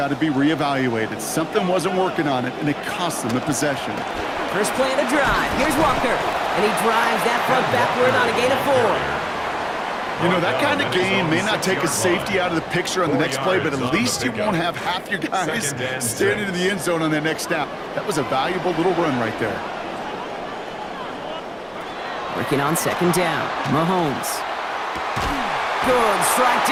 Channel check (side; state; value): both; identical; correlation 1.00